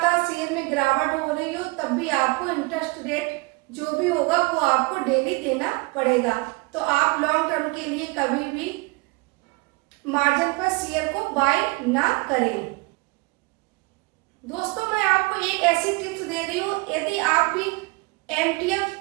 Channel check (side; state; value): left; quieter; 26.6 dB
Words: शेयर में गिरावट हो रही हो तब भी आपको इंटरेस्ट रेट जो भी होगा वो आपको डेली देना पड़ेगा। तो आप लॉन्ग टर्म के लिए कभी भी मार्जिन पर शेयर को बाय ना करें। दोस्तों मैं आपको एक ऐसी टिप्स दे रही हूँ, यदि आप भी